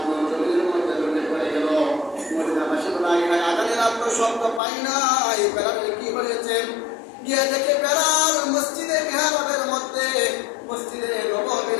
জমির মধ্যে লুটে পড়ে গেল। মদিনাবাসী বলে আজানের আর তো শব্দ পাই নাই, বেলালের কি হয়েছে? গিয়ে দেখে বেলাল মসজিদে মিহরাবের মধ্যে, মসজিদে নববীর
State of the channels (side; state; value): right; drops out; at 4.6 s